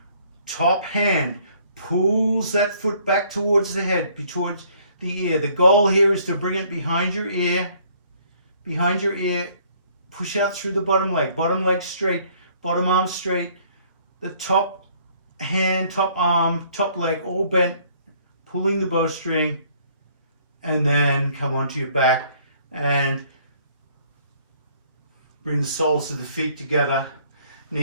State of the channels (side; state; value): both; inverted; correlation -0.61